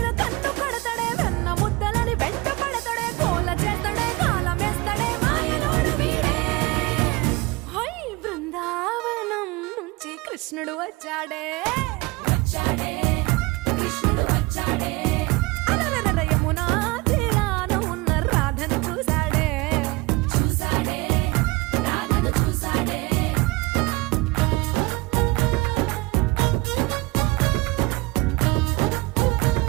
కన్ను కడతాడే వెన్న ముద్దలని వెంట పడతాడే కోల చేస్తాడే కాలం వేస్తాడే మాయలోడు వీడే హై బృందావనం నుంచి కృష్ణుడు వచ్చాడే కృష్ణుడు వచ్చాడే అలరల యమునా తీరాన ఉన్న రాధను చూశాడే రాధను చూసాడే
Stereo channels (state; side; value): quieter; left; 22.8 dB